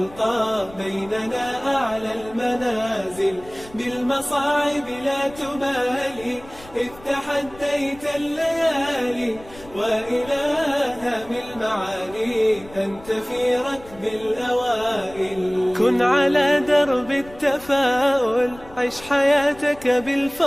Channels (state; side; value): noise; left; rumble, 21 dB below the sound